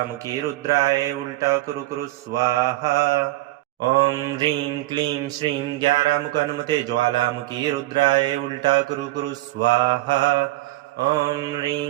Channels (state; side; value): quieter; left; 17.8 dB